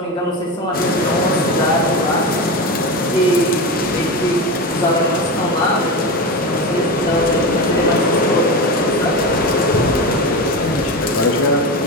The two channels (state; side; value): normal; both; correlation 0.21